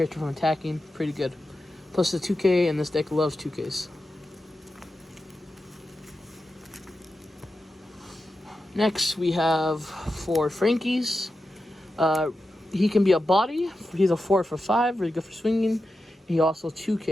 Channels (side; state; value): both; normal; correlation 0.90